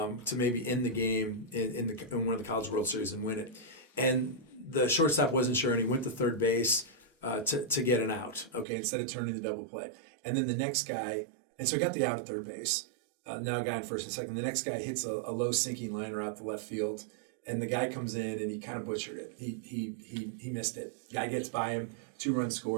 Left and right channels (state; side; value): drops out; left; at 8.7 s